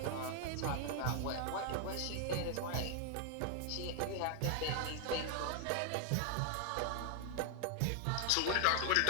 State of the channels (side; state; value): both; different; correlation 0.00